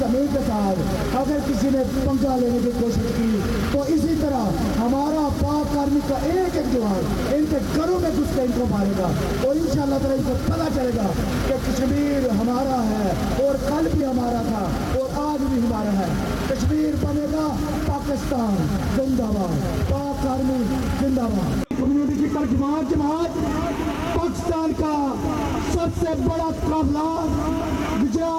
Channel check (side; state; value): both; identical; correlation 1.00